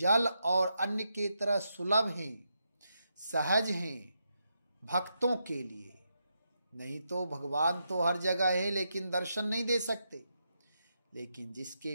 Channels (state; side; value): inverted; both; correlation -0.83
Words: और अन्न के तरह सुलभ हैं, सहज हैं भक्तों के लिए। नहीं तो भगवान तो हर जगह है लेकिन दर्शन नहीं दे सकते। लेकिन